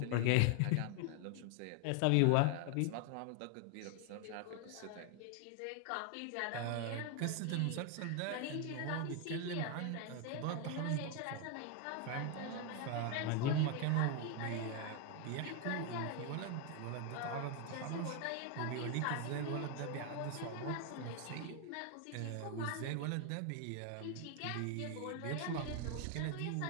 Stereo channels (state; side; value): different; both; correlation 0.00